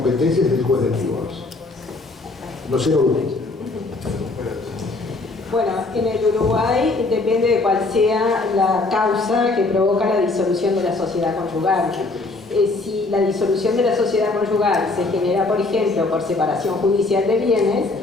es el juez del divorcio. No sé, Bueno, en el Uruguay depende de cuál sea la causa que provoca la disolución de la sociedad conyugal. Si la disolución de la sociedad conyugal se genera, por ejemplo, por separación judicial de bienes,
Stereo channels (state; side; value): quieter; right; 3.4 dB